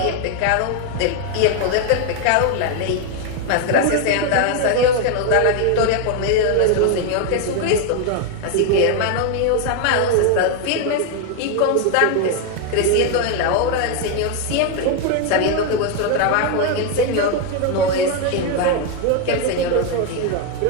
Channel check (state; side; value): different; both; correlation 0.01